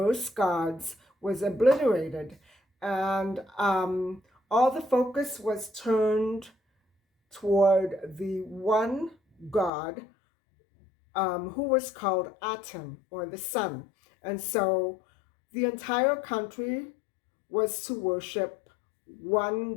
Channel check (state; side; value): drops out; right; at 9.7 s